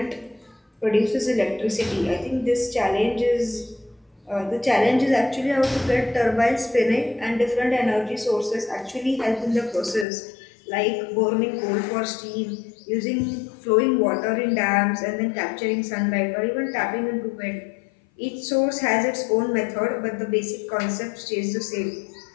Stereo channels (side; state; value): right; drops out; at 10.1 s